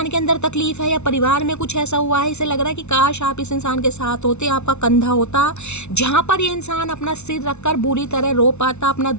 के अंदर तकलीफ है या परिवार में कुछ ऐसा हुआ है, इसे लग रहा है कि काश आप इस इंसान के साथ होते, आपका कंधा होता जहाँ पर ये इंसान अपना सिर रखकर बुरी तरह रो पाता, अपना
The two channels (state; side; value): late; right; 0.82 ms